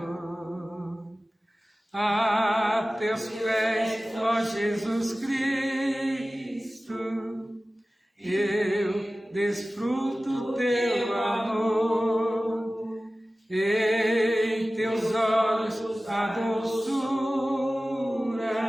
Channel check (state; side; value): normal; both; correlation 0.96